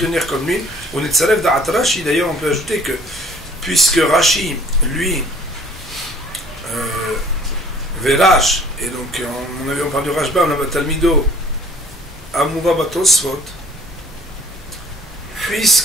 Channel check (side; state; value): both; normal; correlation 0.54